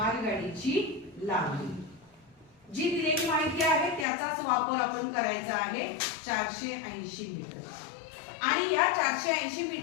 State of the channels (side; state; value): right; drops out; at 4.0 s